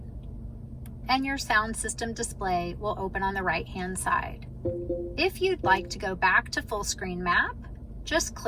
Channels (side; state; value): both; identical; correlation 1.00